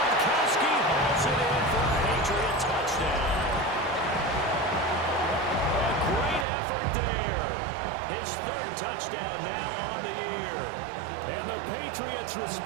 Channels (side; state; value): left; drops out; at 6.5 s